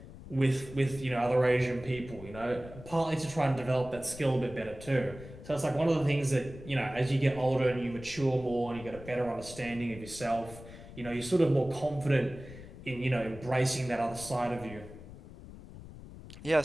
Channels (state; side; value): noise; left; rumble, 15 dB below the sound